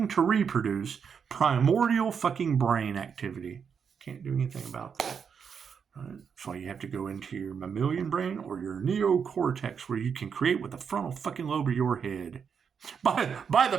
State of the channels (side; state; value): left; quieter; 6.7 dB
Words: to reproduce, primordial fucking brain activity. Can't do anything about that. Right? So you have to go into your mammalian brain or your neocortex where you can create with the frontal fucking lobe of your head. By